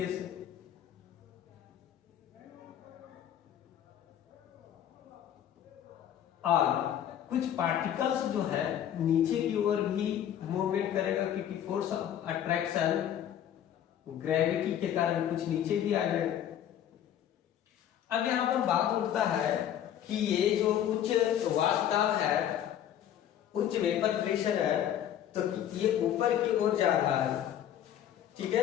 से। और कुछ पार्टिकल्स जो है नीचे की ओर भी मूवमेंट करेगा क्योंकि फोर्स ऑफ अट्रैक्शन ग्रेविटी के कारण कुछ नीचे भी आ जाएगा। अब यहां पर बात उठता है कि ये जो उच्च वाष्पदाब है, उच्च वेपर प्रेशर है, तो ये ऊपर की ओर जा रहा है, ठीक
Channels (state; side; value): quieter; right; 10.5 dB